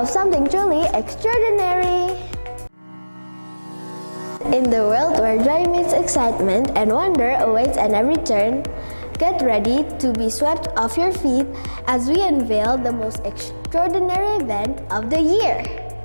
something truly extraordinary. In the world where joy meets excitement and wonder awaits at every turn, get ready to be swept off your feet as we unveil the most extraordinary event of the year.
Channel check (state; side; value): inverted; both; correlation -1.00